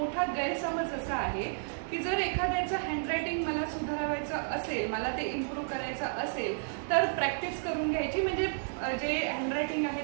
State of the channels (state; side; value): silent; left; digital silence